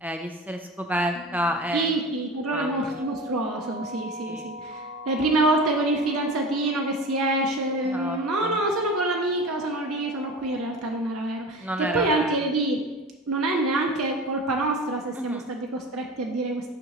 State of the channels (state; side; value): normal; both; correlation 0.32